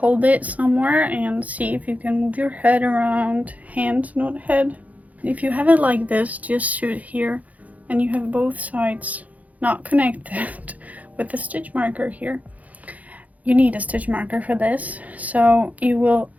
it somewhere and see if you can move your head around, hand, not head. If you have it like this, just shoot here and you have both sides not connected with the stitch marker here. you need a stitch marker for this. So you will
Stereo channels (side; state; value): left; late; 0.073 ms